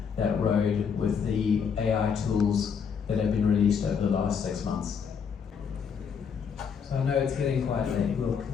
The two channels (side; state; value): right; quieter; 6.6 dB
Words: that road with the AI tools that have been released over the last 6 months. So I know it's getting quite late.